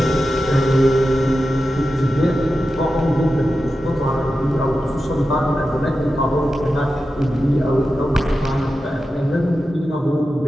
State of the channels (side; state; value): both; normal; correlation 0.91